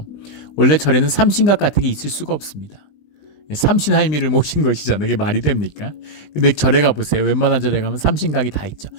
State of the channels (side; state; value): right; late; 20 ms